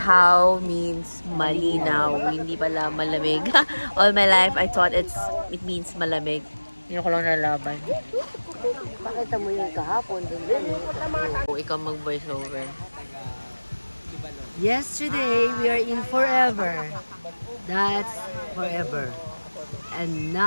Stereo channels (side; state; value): both; inverted; correlation -1.00